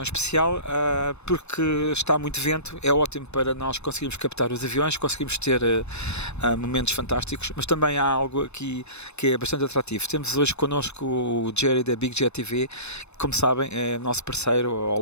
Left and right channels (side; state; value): right; late; 0.81 ms